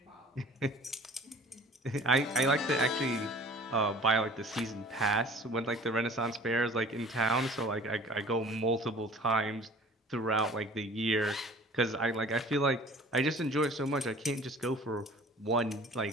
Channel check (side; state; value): both; normal; correlation 0.47